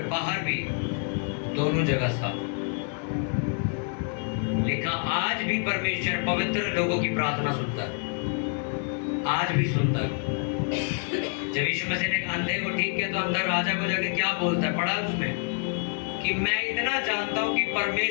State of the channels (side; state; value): right; quieter; 40.0 dB